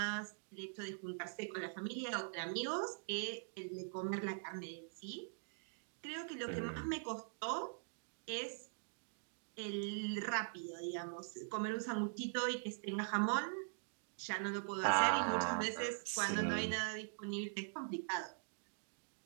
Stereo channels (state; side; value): silent; left; digital silence